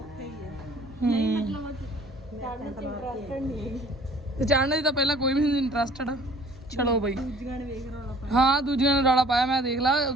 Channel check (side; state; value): both; normal; correlation 0.53